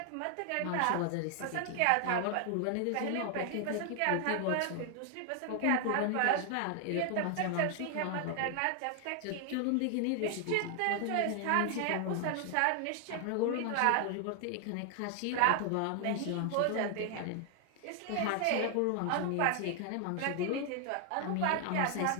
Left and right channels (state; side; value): different; both; correlation 0.00